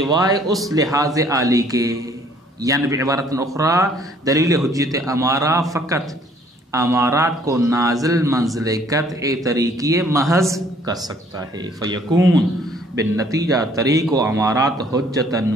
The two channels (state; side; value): normal; both; correlation 0.60